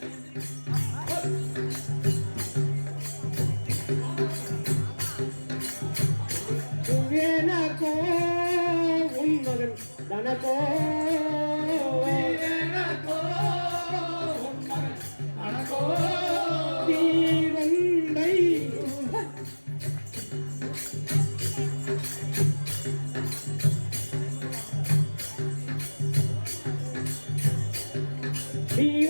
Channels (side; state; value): both; inverted; correlation -1.00